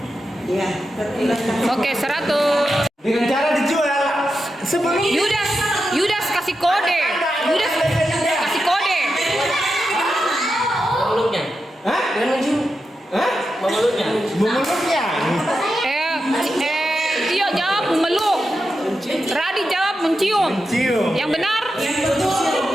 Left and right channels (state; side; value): normal; both; correlation 0.89